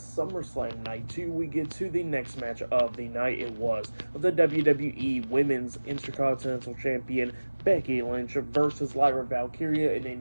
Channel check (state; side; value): inverted; both; correlation -1.00